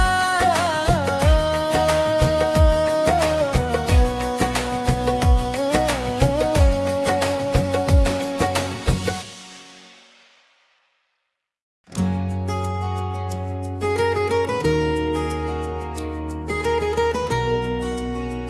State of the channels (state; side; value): identical; both; correlation 1.00